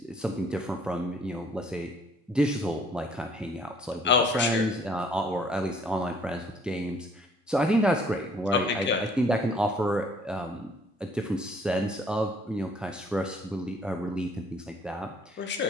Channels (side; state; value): both; normal; correlation 0.59